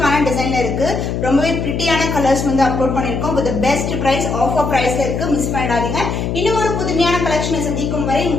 டிசைன்ல இருக்கு. ரொம்பவே பிரிட்டியான கலர்ஸ் வந்து அப்லோட் பண்ணிருக்கோம். வித் பெஸ்ட் பிரைஸ், ஆஃபர் பிரைஸ்ல இருக்கு, மிஸ் பண்ணிடாதீங்க. இன்னும் ஒரு புதுமையான கலெக்ஷனை சந்திக்கும் வரை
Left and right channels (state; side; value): noise; left; hum, 2 dB below the sound